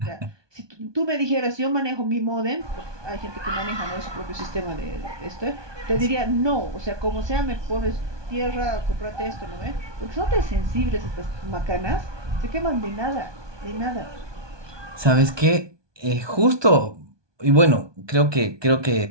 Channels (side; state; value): left; late; 1.2 ms